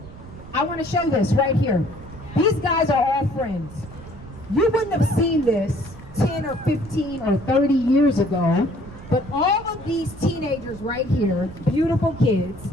I want to show this right here. These guys are all friends. You wouldn't have seen this 10 or 15 or 30 years ago, but all of these teenagers right here, beautiful kids,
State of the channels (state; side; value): noise; right; rumble, 17 dB below the sound